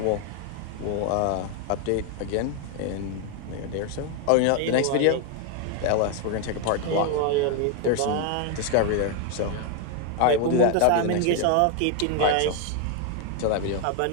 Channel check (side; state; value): both; different; correlation 0.01